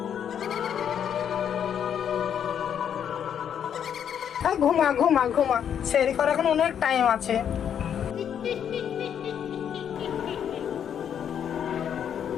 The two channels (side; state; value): right; quieter; 8.7 dB